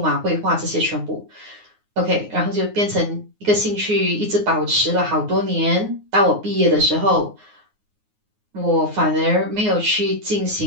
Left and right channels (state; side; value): late; left; 9.5 ms